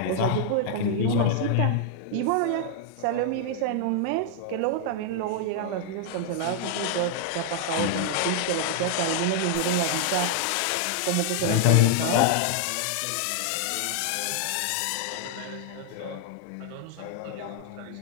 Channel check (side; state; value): both; different; correlation 0.00